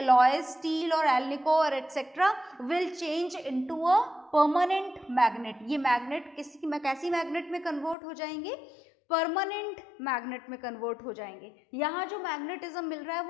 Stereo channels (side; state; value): right; drops out; at 8.0 s